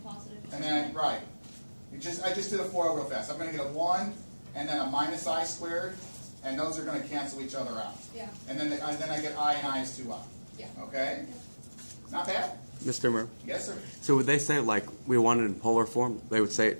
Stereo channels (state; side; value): inverted; both; correlation -1.00